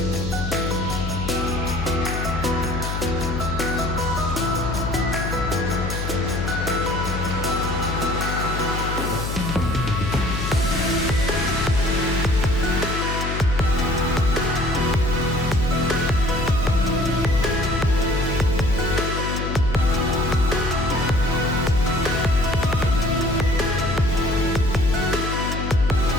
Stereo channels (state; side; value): noise; left; hum, 3 dB below the sound